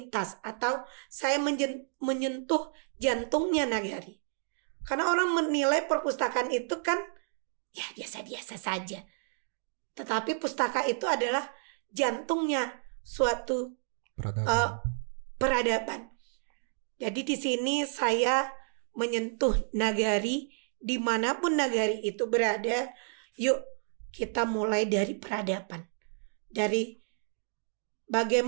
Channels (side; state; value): left; silent; digital silence